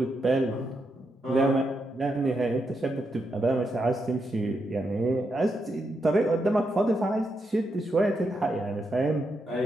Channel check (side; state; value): both; normal; correlation 0.83